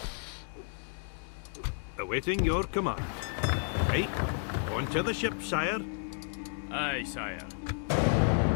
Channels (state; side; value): silent; right; 57 dB below the other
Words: Awaiting your command. Right. On to the ship, sire. Aye, sire.